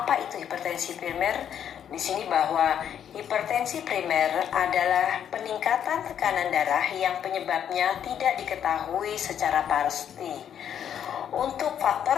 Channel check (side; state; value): right; quieter; 9.1 dB